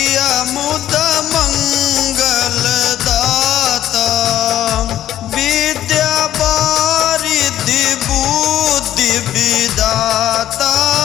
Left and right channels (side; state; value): right; quieter; 12.5 dB